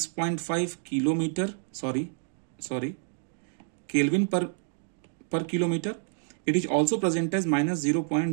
kilometer, Kelvin per kilometer. It is also present as minus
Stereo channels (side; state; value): left; silent; 59 dB below the other